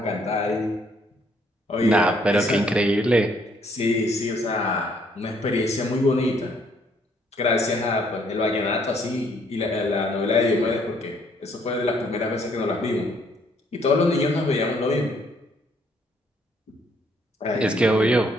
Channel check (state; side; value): normal; both; correlation 0.67